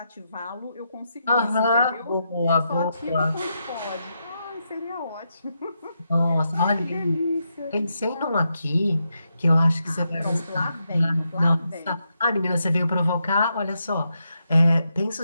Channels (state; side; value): inverted; both; correlation -0.83